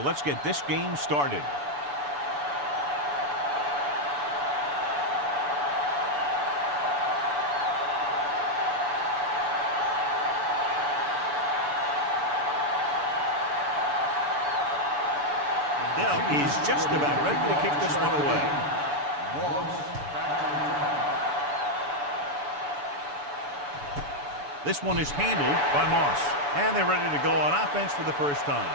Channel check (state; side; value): late; left; 6.9 ms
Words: get this game started. Is just about ready to kick this one away. This one is handled by Moss. And they're ready to go on offense for the first